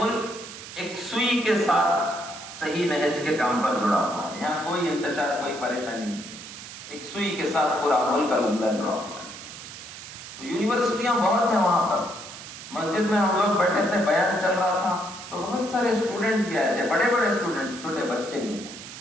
ایک سوئی کے ساتھ صحیح نہج کے کام پر جڑا ہوا ہے، یہاں کوئی انتشار، کوئی پریشانی نہیں ہے، ایک سوئی کے ساتھ پورا ملک الحمدللہ جڑا ہوا ہے۔ تو تو یونیورسٹیاں بہت ہیں وہاں پر. مسجد میں ہم لوگ بیٹھے تھے, بیان چل رہا تھا, تو بہت سارے اسٹوڈنٹس بھی آئے تھے, بڑے بڑے اسٹوڈنٹس, چھوٹے بچے نہیں,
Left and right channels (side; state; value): right; noise; hiss, 13 dB below the sound